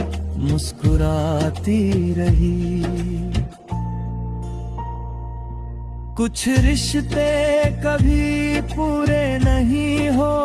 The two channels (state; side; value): identical; both; correlation 1.00